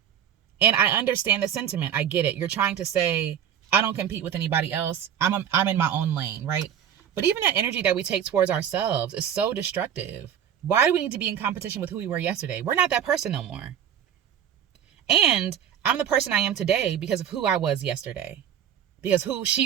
And I understand the sentiment. I get it. You're trying to say, I don't compete with anybody else. I'm in my own lane, right? But even that energy that we take towards ourselves is so destructive. Why do we need to be in competition with who we were yesterday? We're not that person no more. And I'm the person I am today because of who I was yesterday. Because who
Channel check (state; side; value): quieter; left; 9.3 dB